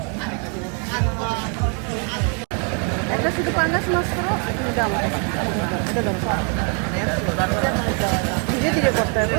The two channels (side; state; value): left; quieter; 38.6 dB